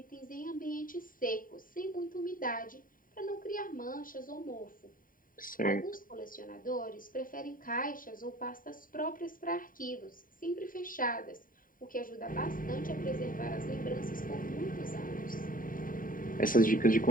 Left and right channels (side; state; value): right; late; 0.40 ms